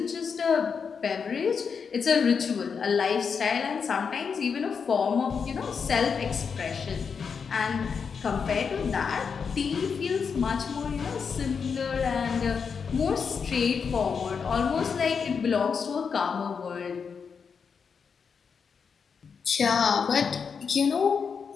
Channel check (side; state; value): right; quieter; 6.1 dB